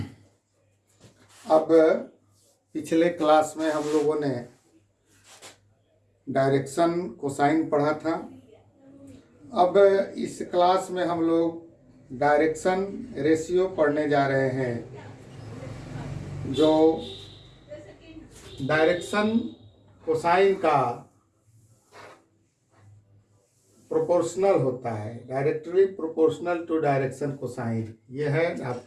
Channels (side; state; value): both; identical; correlation 1.00